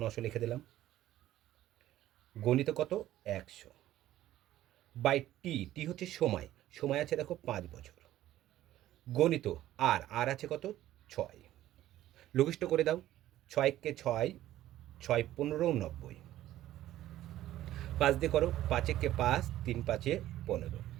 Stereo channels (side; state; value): left; quieter; 13.9 dB